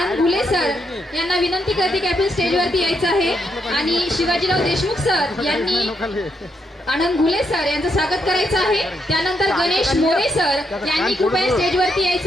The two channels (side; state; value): both; normal; correlation 0.79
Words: घुले सर यांना विनंती करते की आपण स्टेजवरती यायचं आहे आणि शिवाजीराव देशमुख सर यांनी आनंद घुले सर यांचं स्वागत करायचं आहे। त्यानंतर गणेश मोरे सर यांनी कृपया स्टेजवरती